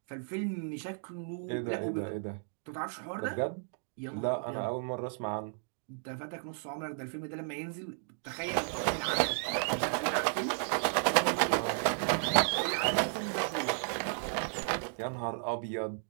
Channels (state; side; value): silent; left; digital silence